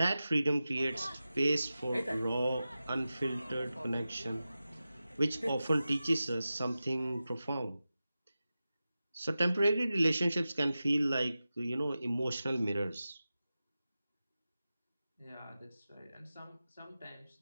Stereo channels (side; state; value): both; inverted; correlation -0.94